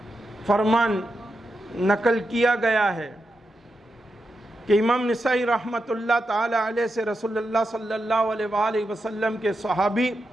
فرمان نقل کیا گیا ہے کہ امام نسائی رحمت اللہ تعالی علیہ سے رسول اللہ صلی اللہ علیہ وآلہ وسلم کے صحابی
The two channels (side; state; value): both; normal; correlation 0.87